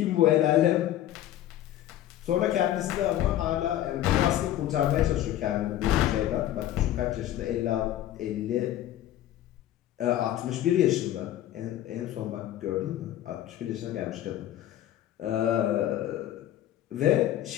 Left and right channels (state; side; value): quieter; right; 12.7 dB